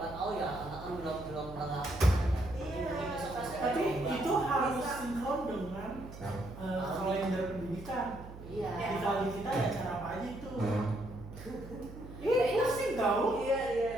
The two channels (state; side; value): noise; right; hum, 14 dB below the sound